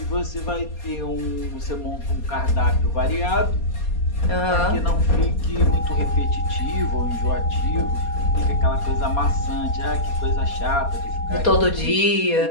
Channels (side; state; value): right; late; 4.2 ms